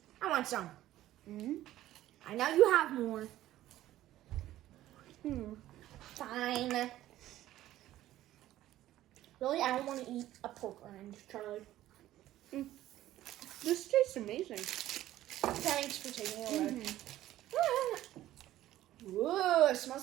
I want some. I know you have more. Fine. Really, I don't want to eat a pork rind, Charlie. This tastes amazing. Thanks for taking it away. Whoa, it smells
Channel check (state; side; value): quieter; left; 14.2 dB